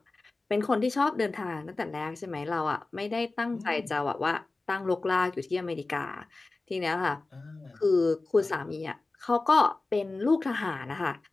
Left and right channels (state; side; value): quieter; right; 3.4 dB